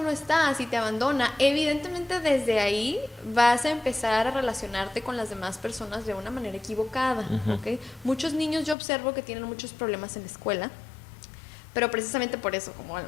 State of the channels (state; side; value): drops out; right; at 8.8 s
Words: está, si te abandona, evidentemente desde ahí vas a empezar a relacionarte con las demás personas de una manera equivocada, ¿ok? Muchos niños yo observo que tienen muchos problemas en la escuela, pero precisamente por eso, como a